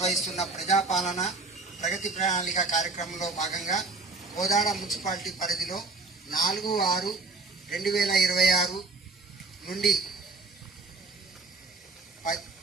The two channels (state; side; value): quieter; left; 3.7 dB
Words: ప్రజాపాలన ప్రగతి ప్రణాళిక కార్యక్రమంలో భాగంగా కోదాడ మున్సిపాలిటీ పరిధిలో 4/6/2026 నుండి